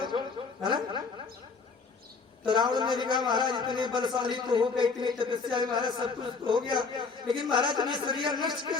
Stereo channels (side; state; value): right; quieter; 4.7 dB